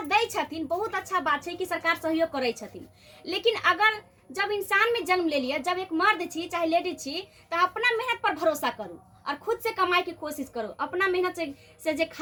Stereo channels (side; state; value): both; identical; correlation 1.00